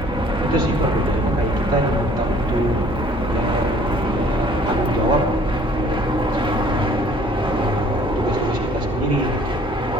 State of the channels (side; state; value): both; normal; correlation 0.56